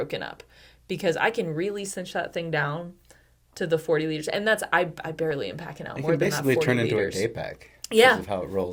up? Because I can really cinch that thing down to the 40 liters. And that's, I barely am packing out more than that 40 liters. It can basically turn into a day pack. Yeah. Because of how it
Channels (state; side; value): identical; both; correlation 1.00